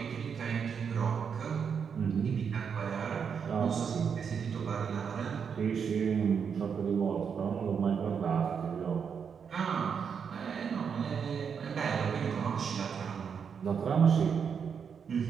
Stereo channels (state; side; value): quieter; left; 6.8 dB